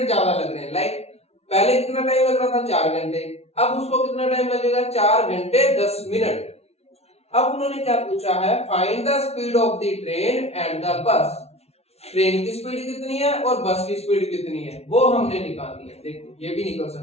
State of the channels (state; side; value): late; right; 0.31 ms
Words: ज्यादा लग रहे हैं। लाइक पहले कितना टाइम लग रहा था 4 घंटे, अब उसको कितना टाइम लगेगा 4 घंटे 10 मिनट। अब उन्होंने क्या पूछा है, find the speed of the train and the bus. Train की स्पीड कितनी है और बस की स्पीड कितनी है वो हमने निकालनी है। देखो ये भी निकल